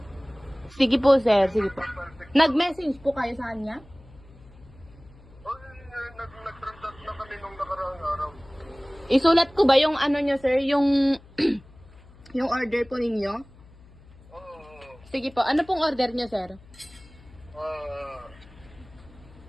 Sige po, sir. Sige po. Profile picture. Nag-message po kayo sa kanya? Nag-transact na kami nung nakaraang araw. Isulat ko ba yung ano nyo, sir? Yung yung order po ninyo? Oo. Sige po. Ano pong order nyo, sir?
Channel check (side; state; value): left; noise; hum, 23 dB below the sound